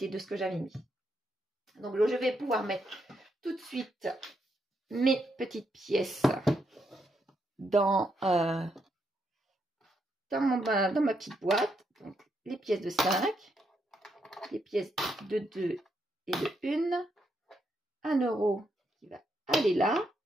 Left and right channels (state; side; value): normal; both; correlation 0.79